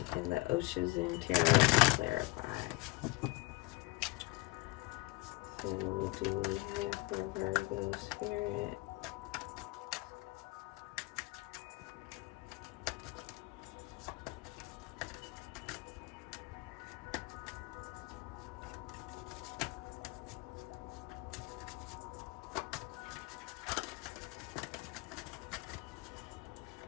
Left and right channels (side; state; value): right; quieter; 22.6 dB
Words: and the ʟᴏᴠᴇ Tarot to clarify. So what do we have for Virgo Spirit?